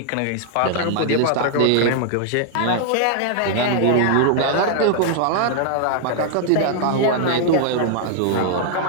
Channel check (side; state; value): both; different; correlation 0.00